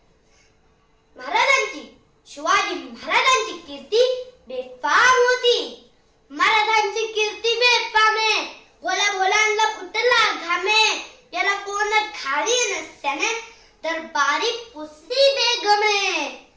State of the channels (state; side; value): identical; both; correlation 1.00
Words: शिवाजी महाराजांची कीर्ती बेफाम होती। महाराजांची कीर्ती बेफाम आहे। भोला भोलांना फुटला घामे, याला कोण खाली नसत्याने दरबारी पुसली बेगमे।